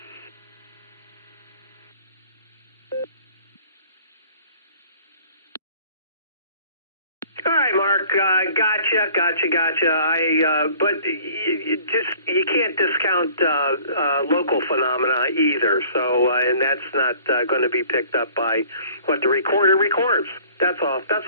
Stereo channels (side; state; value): both; inverted; correlation -0.52